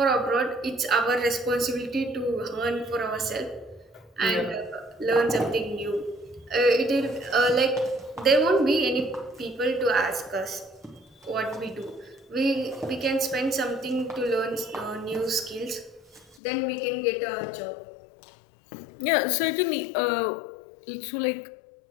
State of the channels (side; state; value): right; drops out; at 16.4 s